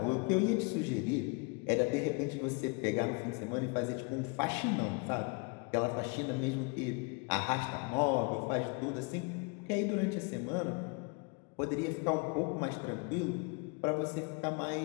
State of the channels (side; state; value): right; quieter; 32.3 dB